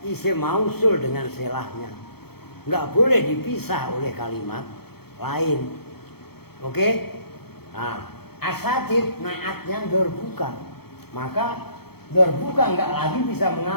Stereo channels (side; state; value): right; late; 0.96 ms